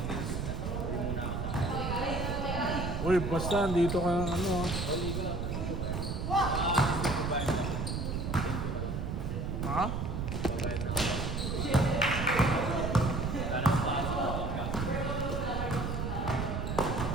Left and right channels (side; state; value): right; noise; rumble, 2 dB below the sound